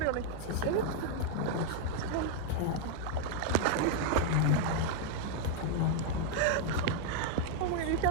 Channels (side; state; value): both; different; correlation 0.00